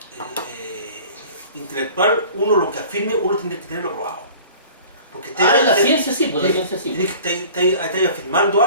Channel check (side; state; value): both; inverted; correlation -0.45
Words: intelectual, uno lo que afirme, uno tiene que tenerlo probado. Porque En la ciencia sí, pues la ciencia sí. Tienes que estar afirmando